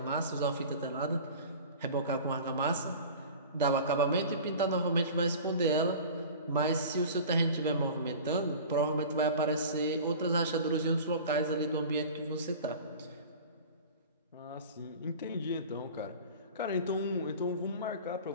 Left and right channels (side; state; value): both; inverted; correlation -0.38